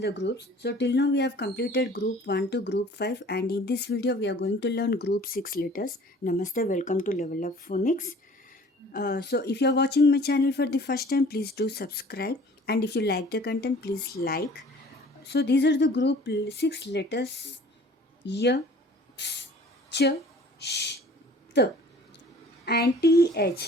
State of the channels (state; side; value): normal; both; correlation 0.50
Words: groups. So till now we have completed group 1 to group 5, and in this video we are going to learn group 6 letters. Namaste, welcome to Level Up Phonics. So if you are watching my channel for the first time, please do subscribe, and if you like the content, please like. So these are the group 6 letters: y, ps, ch, sh, t, and